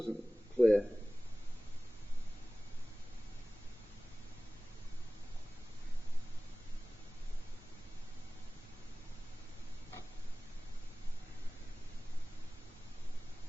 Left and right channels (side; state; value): both; normal; correlation 0.98